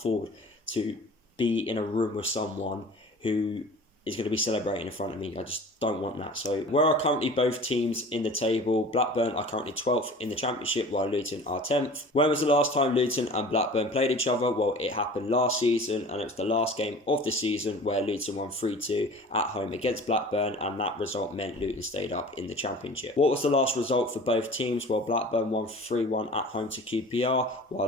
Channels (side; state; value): both; normal; correlation 0.42